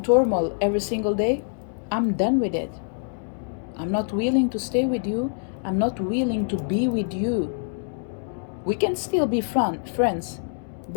turmoil every single day, I'm done with it. I'm not willing to stay with you. I'm not willing to be with you. We can still be friends,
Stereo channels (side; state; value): right; silent; digital silence